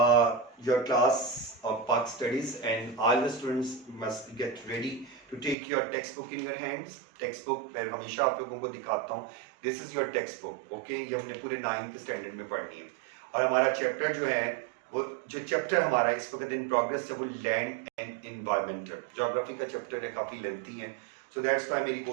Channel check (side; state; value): left; drops out; at 5.6 s